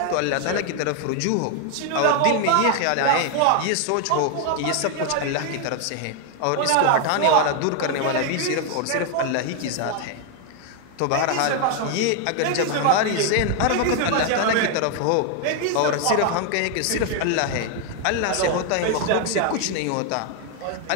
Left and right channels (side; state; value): both; different; correlation 0.00